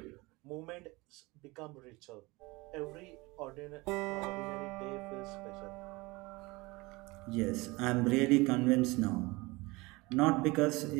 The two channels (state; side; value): quieter; left; 23.2 dB